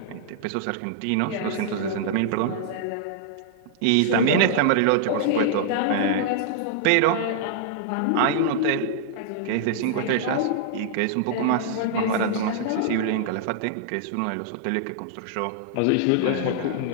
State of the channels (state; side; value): different; both; correlation -0.01